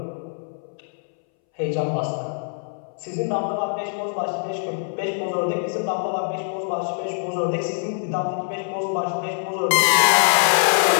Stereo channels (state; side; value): silent; right; 62 dB below the other